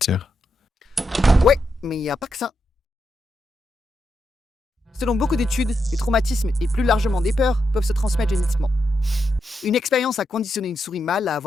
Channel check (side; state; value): both; normal; correlation 0.83